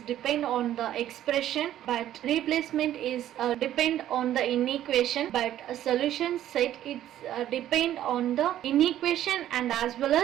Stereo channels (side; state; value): left; quieter; 12.2 dB